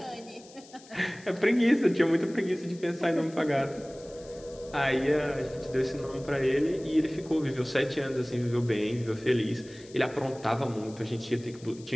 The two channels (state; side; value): noise; left; hiss, 22 dB below the sound